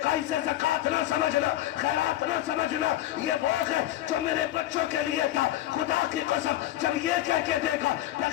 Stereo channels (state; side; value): quieter; right; 14.1 dB